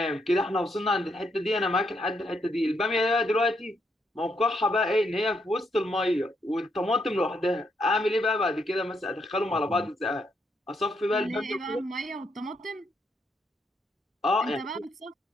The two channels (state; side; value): normal; both; correlation 0.77